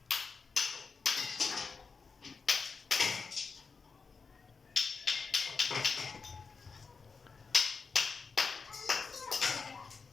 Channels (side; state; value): right; quieter; 4.9 dB